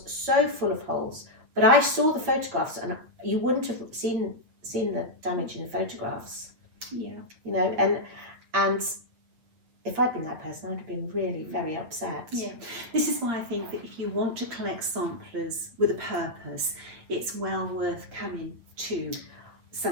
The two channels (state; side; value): late; left; 8.5 ms